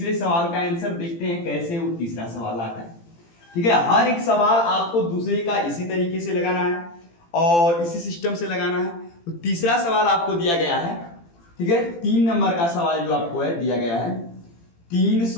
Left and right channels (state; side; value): late; right; 18 ms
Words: सवाल का आंसर, देखते हैं कैसे वो तीसरा सवाल आता है। ठीक है, हर एक सवाल आपको दूसरे का इसी तरीके से लगाना है और इसी सिस्टम से लगाना है। तो तीसरा सवाल आपको दिया गया है, ठीक है, 3 नंबर का सवाल जो आपको है दिया गया है